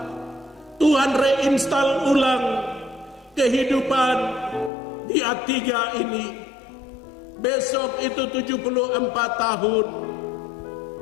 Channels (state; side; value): drops out; right; at 4.7 s